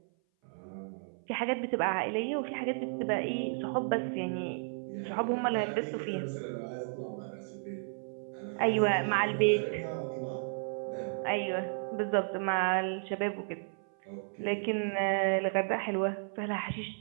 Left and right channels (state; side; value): silent; left; 56 dB below the other